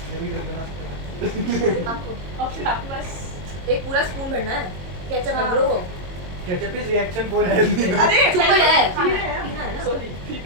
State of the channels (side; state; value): left; late; 22 ms